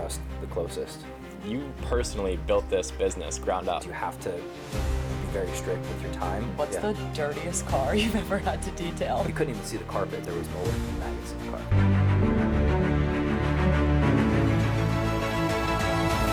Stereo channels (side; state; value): both; identical; correlation 1.00